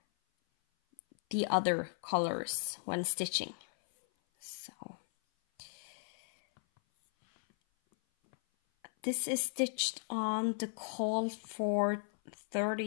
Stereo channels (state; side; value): silent; right; 54 dB below the other